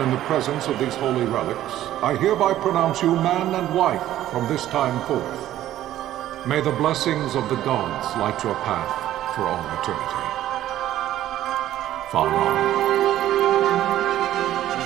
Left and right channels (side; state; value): left; quieter; 13.1 dB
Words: in the presence of these holy relics, I hereby pronounce you man and wife from this time forth. May the blessings of the gods light your path for all eternity. Vaan.